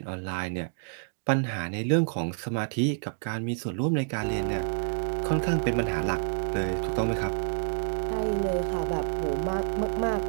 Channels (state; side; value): silent; left; 59 dB below the other